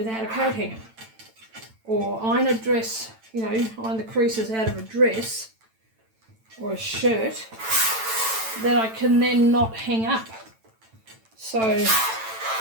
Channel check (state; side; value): late; left; 9.0 ms